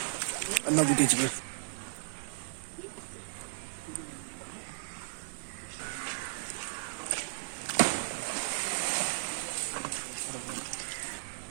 அண்ணா கூட்டி வச்சுக்கோ.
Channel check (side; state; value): left; silent; 54 dB below the other